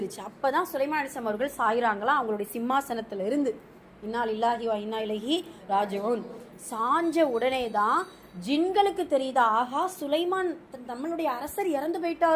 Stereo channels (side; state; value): both; identical; correlation 1.00